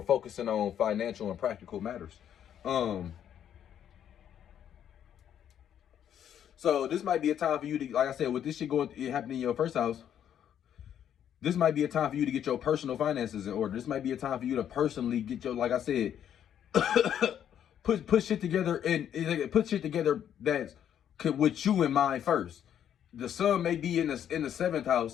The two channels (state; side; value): quieter; right; 9.7 dB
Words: focusing on financial and practical matters. So this might be a time for you to, like I said, with this shit happening in your first house, this might be a time for you to get your personal finances in order. This might be a time for you to personally get your, like I said, put shit together, and put shit together that's with you in mind first. The sun may be in the seventh